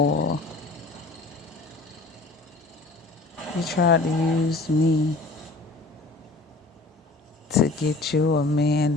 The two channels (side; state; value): right; quieter; 3.3 dB